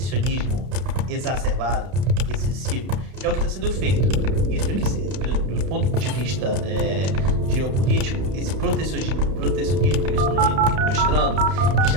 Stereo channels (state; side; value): late; left; 32 ms